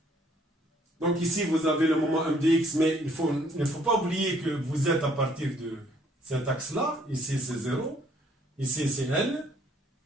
Donc ici, vous avez le moment M de X, mais il ne faut pas oublier que vous êtes à partir de cet axe-là. Ici, c'est 0. Ici, c'est L.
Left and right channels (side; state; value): both; normal; correlation 0.63